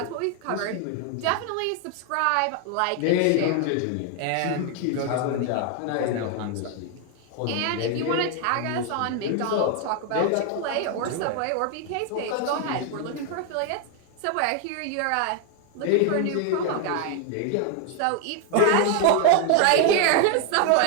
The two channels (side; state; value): both; different; correlation 0.01